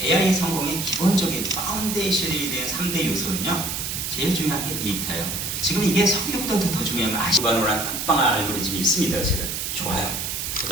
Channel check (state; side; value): noise; right; hiss, 3 dB below the sound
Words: AI 성공의 기본적인 파운데이션이 된 3대 요소는요, 제일 중요한 게 데이터예요. 지금 이게 석유보다도 더 중요한 건 기반으로한 빵빵한 알고리즘이 있습니다. 제가 좋아요. 그